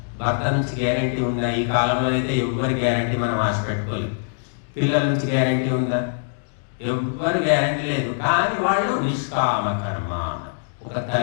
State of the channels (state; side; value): silent; right; digital silence